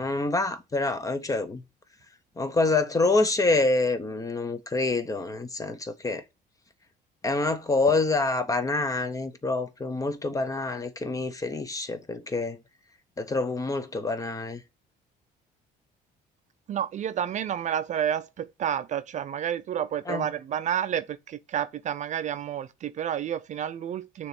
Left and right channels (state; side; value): normal; both; correlation 0.45